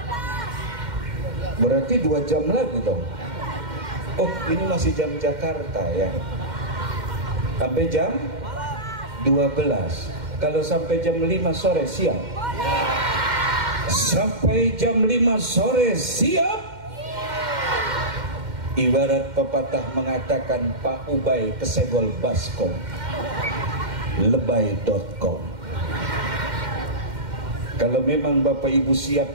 Berarti 2 jam lagi dong. Oh, ini masih jam Jakarta ya. Sampai jam 12. Kalau sampai jam 5 sore siap? Sampai jam 5 sore siap? Ibarat pepatah mengatakan Pak Ubay kesegol baskom, lebay.com. Kalau memang Bapak Ibu siap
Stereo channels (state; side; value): late; left; 2.1 ms